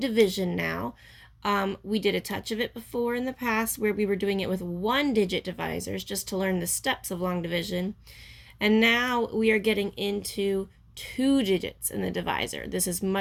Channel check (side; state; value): both; identical; correlation 1.00